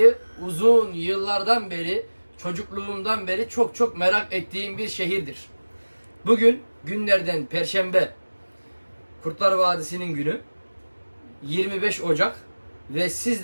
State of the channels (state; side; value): inverted; both; correlation -1.00